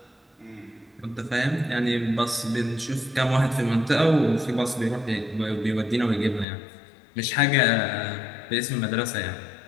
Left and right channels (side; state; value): right; drops out; at 6.5 s